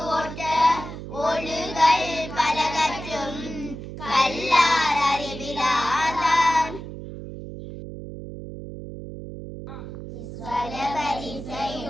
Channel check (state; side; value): noise; right; hum, 10 dB below the sound